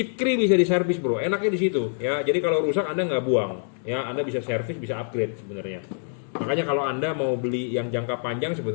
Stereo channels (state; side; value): silent; right; digital silence